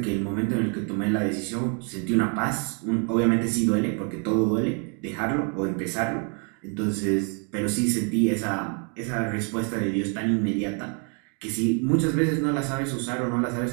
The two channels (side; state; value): left; quieter; 38.7 dB